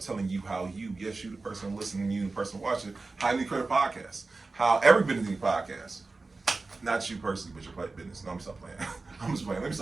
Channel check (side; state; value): left; quieter; 3.7 dB